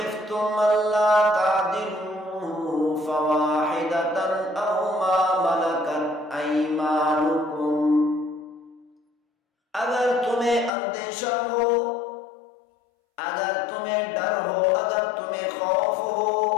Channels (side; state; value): right; drops out; at 10.7 s